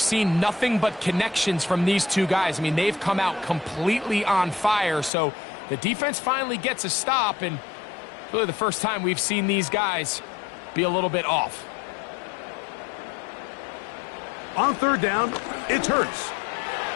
nothing but connections from these two guys. I mean, they've come out completely on fire. So the defense finally gets a stop, and really the first time we've seen these guys be a little bit off. On third down, it's Hurts.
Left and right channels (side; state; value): right; drops out; at 5.1 s